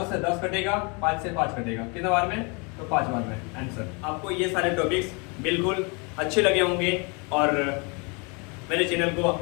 से 10 कटेगा, 5 से 5 कटेगा, कितने बार में? तो 5 बार में आंसर। आपको ये सारे टॉपिक्स बिल्कुल अच्छे लगे होंगे और मेरे चैनल को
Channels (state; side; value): quieter; right; 31.9 dB